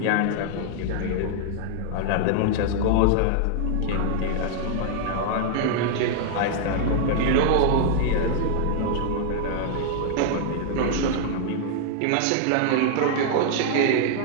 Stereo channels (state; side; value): different; both; correlation -0.01